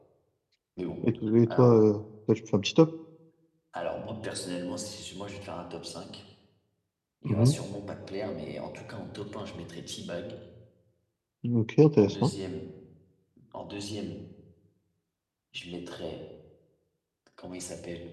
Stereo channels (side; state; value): both; identical; correlation 1.00